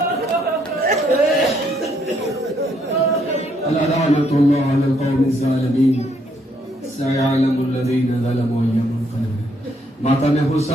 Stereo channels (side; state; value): both; normal; correlation 0.71